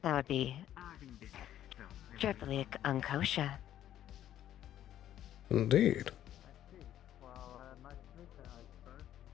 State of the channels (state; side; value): quieter; right; 11.7 dB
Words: That would be triply unkosher. Indeed.